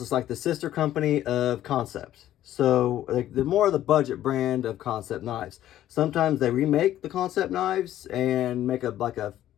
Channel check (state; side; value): quieter; right; 12.7 dB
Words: it's like the sister company of Concept. So, like, the more of the budget brand of Concept knives. Sometimes they remake the Concept knives and make a